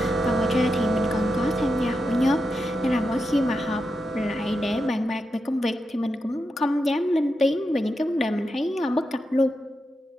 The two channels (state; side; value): normal; both; correlation 0.87